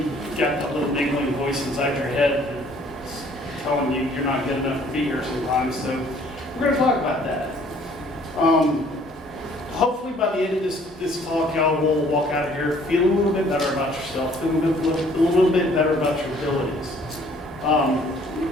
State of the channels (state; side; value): normal; both; correlation 0.58